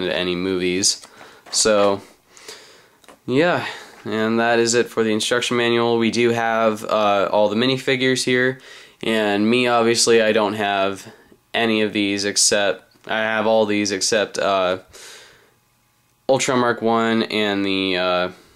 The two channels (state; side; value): identical; both; correlation 1.00